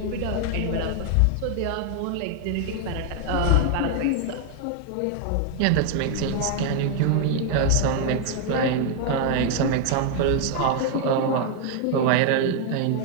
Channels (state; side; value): different; both; correlation 0.00